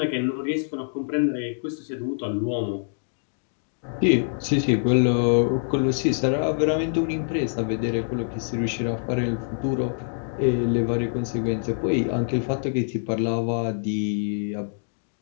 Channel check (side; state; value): right; silent; digital silence